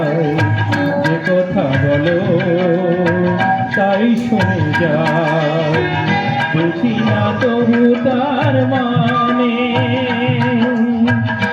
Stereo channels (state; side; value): identical; both; correlation 1.00